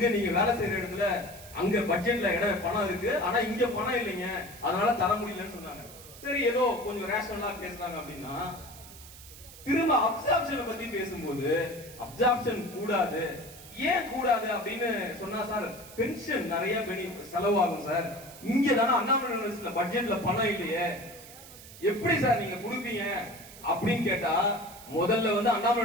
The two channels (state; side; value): noise; right; hiss, 17 dB below the sound